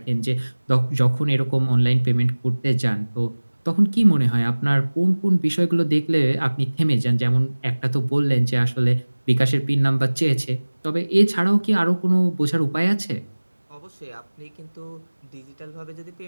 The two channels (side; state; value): both; inverted; correlation -1.00